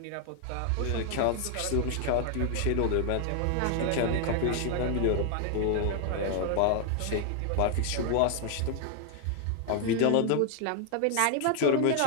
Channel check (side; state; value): both; different; correlation 0.00